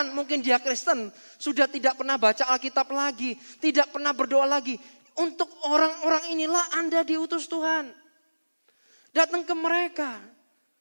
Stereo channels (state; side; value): inverted; both; correlation -1.00